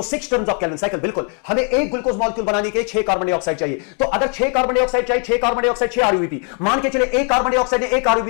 6 turns of Calvin cycle, बिल्कुल हमें एक ग्लूकोज मॉलिक्यूल बनाने के 6 कार्बन डाइऑक्साइड चाहिए। तो अगर 6 कार्बन डाइऑक्साइड चाहिए, 6 कार्बन डाइऑक्साइड 6 RUBP, मान के चले एक कार्बन डाइऑक्साइड ने एक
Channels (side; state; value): right; quieter; 35.7 dB